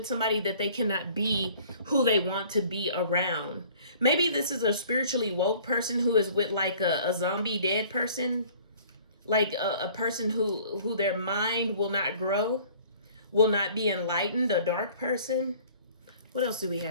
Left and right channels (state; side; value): inverted; both; correlation -0.52